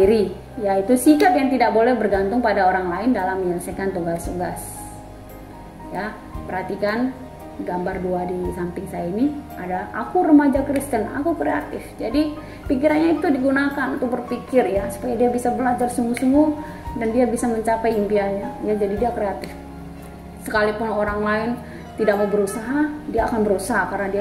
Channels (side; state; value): both; identical; correlation 1.00